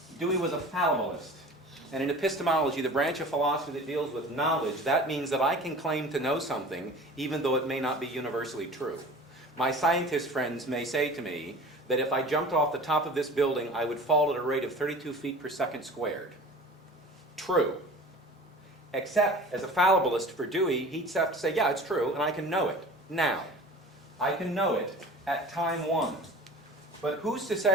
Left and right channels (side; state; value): both; normal; correlation 0.40